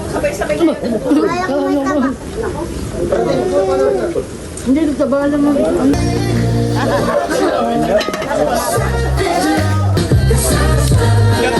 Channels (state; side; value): identical; both; correlation 1.00